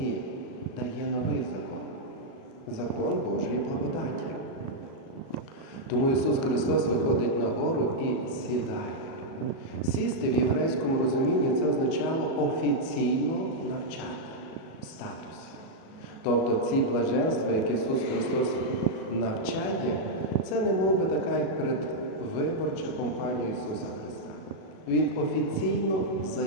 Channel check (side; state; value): right; late; 37 ms